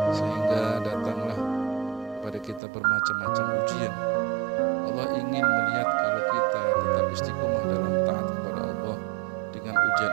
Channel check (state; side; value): drops out; left; at 2.6 s